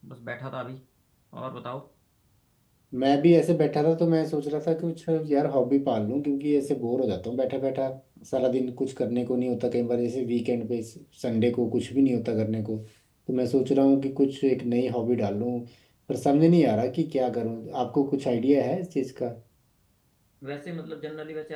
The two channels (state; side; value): identical; both; correlation 1.00